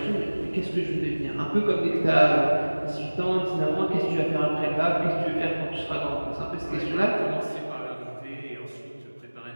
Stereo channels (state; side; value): inverted; both; correlation -1.00